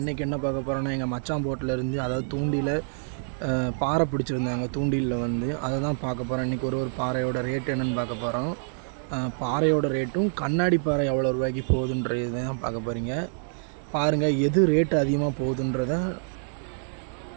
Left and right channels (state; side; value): silent; left; digital silence